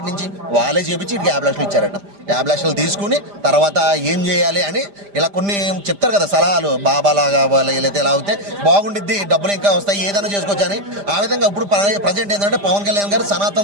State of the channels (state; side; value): late; left; 5.0 ms